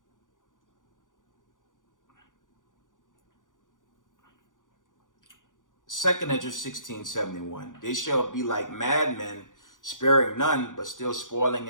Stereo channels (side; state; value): right; late; 0.88 ms